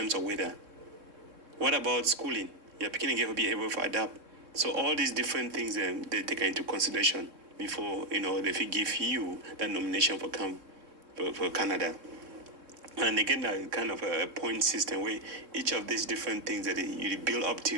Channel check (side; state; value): left; late; 3.7 ms